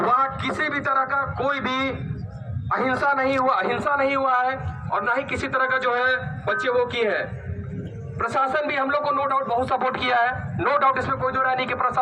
किसी भी तरह का कोई भी अहिंसा नहीं हुआ है और ना ही किसी तरह का जो है बच्चे वो की है। प्रशासन भी हम लोग को नो डाउट बहुत सपोर्ट किया है, नो डाउट इसमें कोई दो राय नहीं कि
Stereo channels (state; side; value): identical; both; correlation 1.00